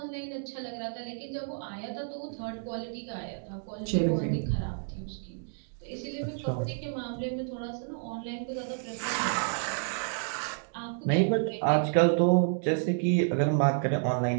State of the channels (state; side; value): silent; left; digital silence